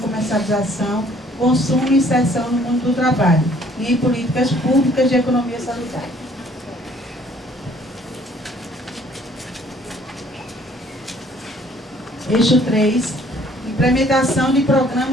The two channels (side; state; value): both; normal; correlation 0.59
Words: consumo e inserção no mundo do trabalho e em políticas públicas de economia solidária. Eixo 3, implementação de